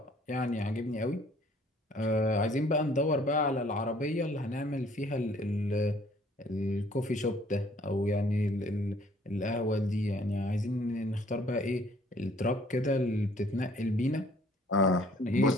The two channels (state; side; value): normal; both; correlation 0.59